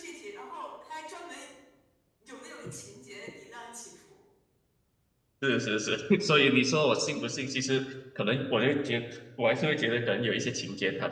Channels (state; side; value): identical; both; correlation 1.00